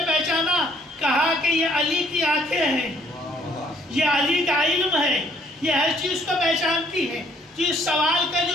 پہچانا؟ کہا کہ یہ علی کی آنکھیں ہیں، یہ علی کا علم ہے، یہ ہر چیز کو پہچانتی ہے. جس سوال کا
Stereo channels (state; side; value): normal; both; correlation 0.63